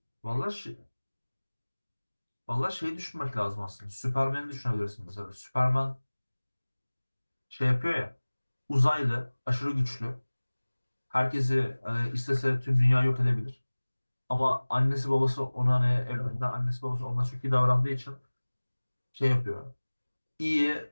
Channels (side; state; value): both; inverted; correlation -1.00